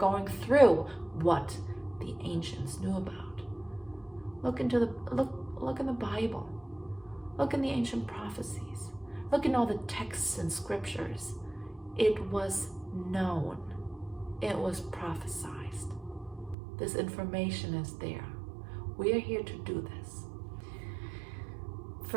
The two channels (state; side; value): drops out; left; at 16.6 s